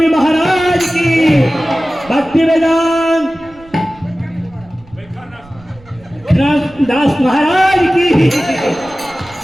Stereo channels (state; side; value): noise; right; rumble, 25 dB below the sound